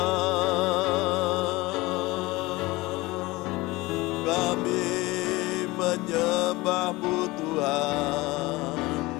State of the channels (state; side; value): quieter; right; 21.2 dB